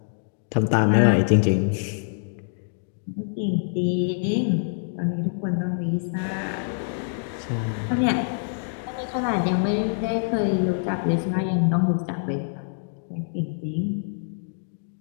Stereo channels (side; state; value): right; silent; digital silence